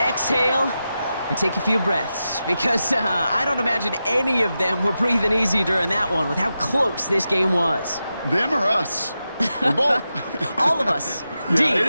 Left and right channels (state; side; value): inverted; both; correlation -0.90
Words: and take a few breaths because I don't imagine any of them were breathing easy during that one with how close this game was. Them or us? We're both. All of us. Yeah,